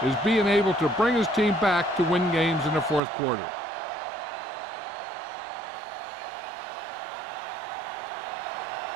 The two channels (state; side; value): drops out; left; at 3.0 s